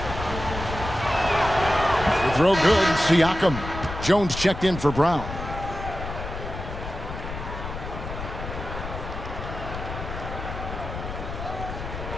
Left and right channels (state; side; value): noise; left; rumble, 8 dB below the sound